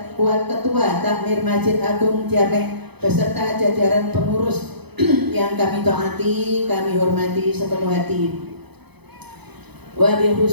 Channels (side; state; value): left; late; 0.98 ms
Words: Takmir Masjid Agung Jamek beserta jajaran pengurus yang kami taati, kami hormati sepenuh hati. Wabil